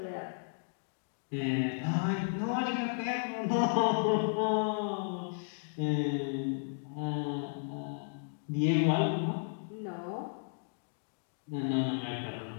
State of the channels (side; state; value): right; silent; digital silence